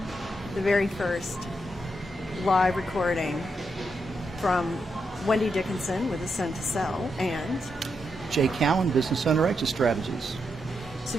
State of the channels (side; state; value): both; normal; correlation 0.83